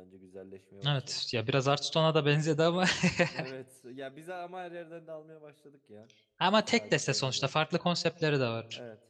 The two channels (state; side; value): identical; both; correlation 1.00